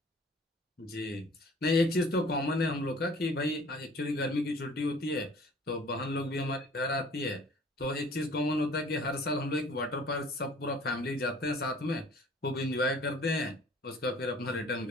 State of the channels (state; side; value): normal; both; correlation 0.51